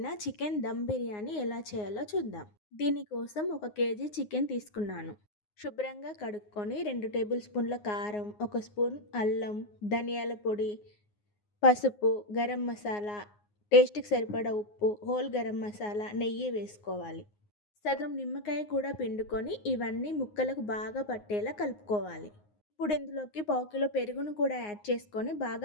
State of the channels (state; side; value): late; right; 9.6 ms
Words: చికెన్ దమ్ బిర్యానీ ఎలా చేయాలో చూద్దాం. దీనికోసం 1 కేజీ చికెన్ తీసుకున్నాను. శుభ్రంగా కడుక్కొని 2 టేబుల్ స్పూన్ల కారం, 1 స్పూన్ అల్లం, ధనియాల పొడి, పసుపు, గరం మసాలా, టేస్ట్కి సరిపడా ఉప్పు, హోల్ గరం మసాలా, నెయ్యి వేసుకోవాలి. సగం నిమ్మకాయ కూడా పిండుకొని ఇవన్నీ ముక్కలకు బాగా పట్టేలా కలుపుకోవాలి. ఇప్పుడు ఇందులోకి పావు కిలో పెరుగును కూడా యాడ్ చేసుకొని